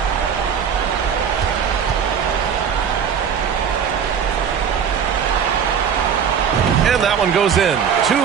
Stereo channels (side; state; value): left; quieter; 7.5 dB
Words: And that one goes in.